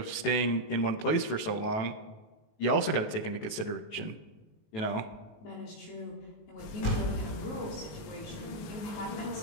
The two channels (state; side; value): late; right; 18 ms